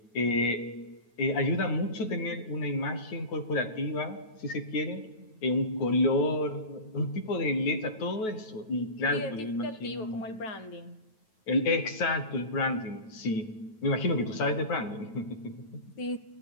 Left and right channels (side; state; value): right; late; 9.2 ms